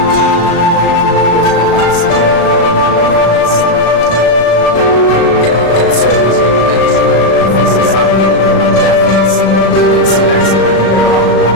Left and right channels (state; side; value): late; right; 36 ms